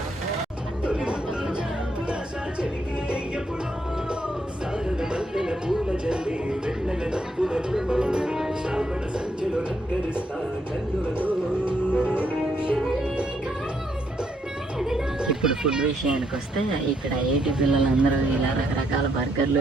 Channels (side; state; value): both; normal; correlation 0.75